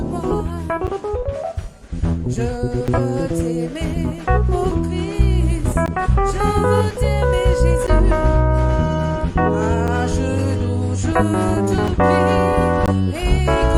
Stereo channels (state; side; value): identical; both; correlation 1.00